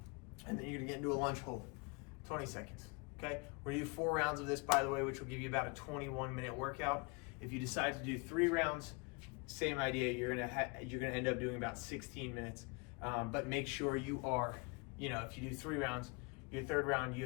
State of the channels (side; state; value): right; quieter; 30.4 dB